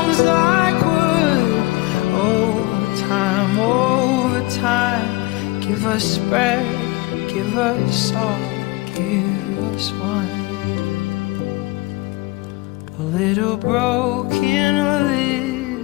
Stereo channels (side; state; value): right; quieter; 20.8 dB